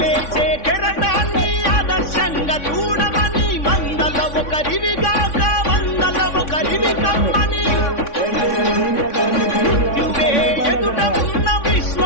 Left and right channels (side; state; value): right; late; 3.5 ms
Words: కెరటాన్ని ఆదర్శంగా చూడమని మందల ఒకరివిగాక వందల ఒకరివి కమ్మని మృత్యువే ఎదుట ఉన్న